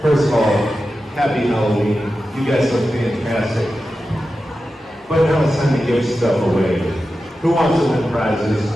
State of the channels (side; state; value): both; normal; correlation 0.92